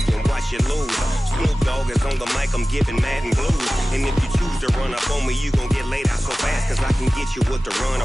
and watch you lose. Snoop Dogg is on the mic, I'm giving Madden blues. And if you choose to run up on me, you gon' get laid out so fast, cause I can get you with the run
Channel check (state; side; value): normal; both; correlation 0.96